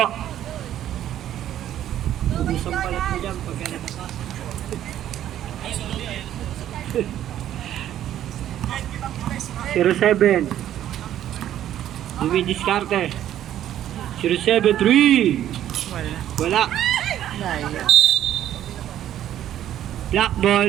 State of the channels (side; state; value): left; quieter; 11.6 dB